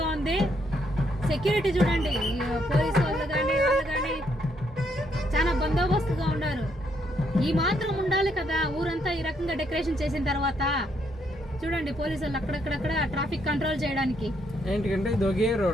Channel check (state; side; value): normal; both; correlation 0.73